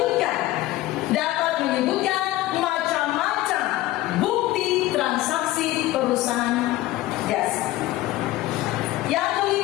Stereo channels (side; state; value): right; quieter; 16.5 dB